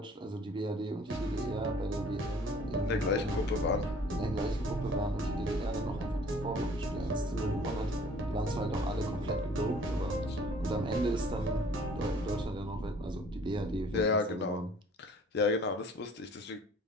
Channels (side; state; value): both; normal; correlation 0.54